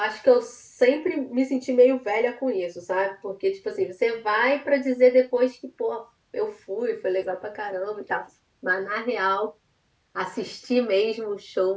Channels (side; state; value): both; identical; correlation 1.00